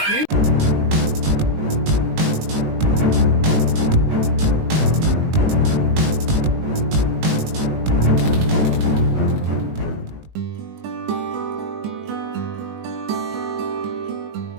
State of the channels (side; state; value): left; late; 19 ms